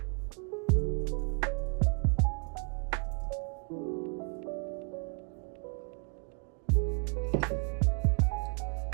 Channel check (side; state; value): left; quieter; 38.4 dB